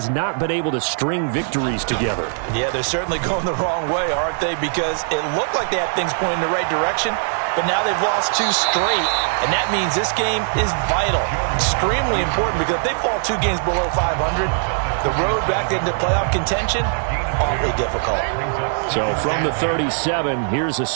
not been able to string victories together. Yeah, they're certainly going the wrong way, aren't they? Because it looked like they had things pointing in the right direction, but now they've lost 2 straight, and that means this game is vital, extremely important, because if they fall 2 games below 500, the road back into playoff contention, awfully difficult. So from the 37, here's a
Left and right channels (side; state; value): left; silent; 65 dB below the other